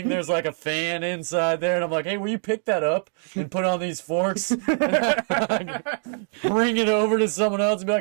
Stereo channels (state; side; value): silent; left; 63 dB below the other